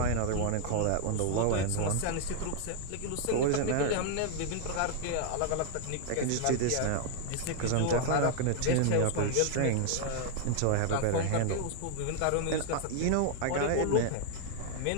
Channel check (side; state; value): both; different; correlation 0.00